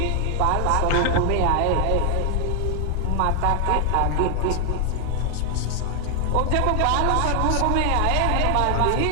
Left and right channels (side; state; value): both; different; correlation 0.00